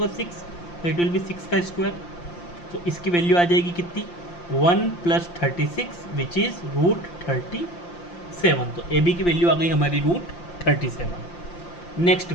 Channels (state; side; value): late; right; 5.8 ms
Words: 6, तो इट विल बी 6 का स्क्वायर। तो इसकी वैल्यू आ जाएगी कितनी, 1 + 36 विच इज़ √37। तो ए बी की वैल्यू आ गई हमारी √37। Next